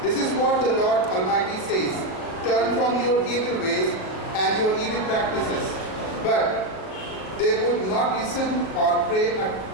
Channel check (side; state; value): right; late; 38 ms